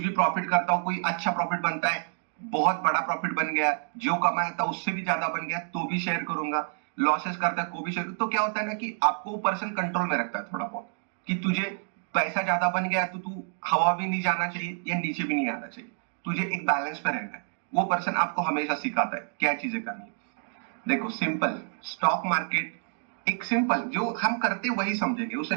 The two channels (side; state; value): left; silent; 59 dB below the other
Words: प्रॉफिट करता हूँ, कोई अच्छा प्रॉफिट बनता है, बहुत बड़ा प्रॉफिट बन गया, जो कमाया था उससे भी ज्यादा बन गया, तो भी शेयर करूंगा, लॉसेस करता है को भी शेयर। तो क्या होता है ना कि आपको वो पर्सन कंट्रोल में रखता है थोड़ा बहुत, कि तुझे पैसा ज्यादा बन गया तो तू हवा भी नहीं जाना चाहिए या नीचे भी नहीं आना चाहिए, तुझे एक बैलेंस पे रहना है। वो पर्सन आपको हमेशा सिखाता है क्या चीजें करनी है। देखो सिंपल, स्टॉक मार्केट एक सिंपल जो हम करते वही समझेंगे, उससे